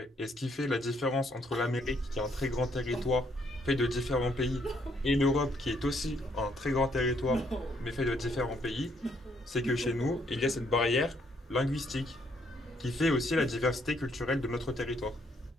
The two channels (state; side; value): normal; both; correlation 0.70